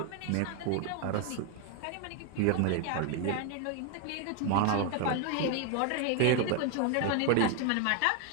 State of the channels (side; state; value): both; different; correlation 0.00